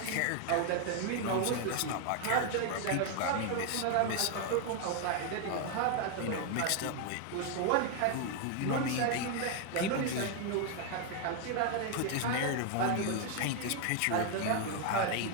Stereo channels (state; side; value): different; both; correlation 0.00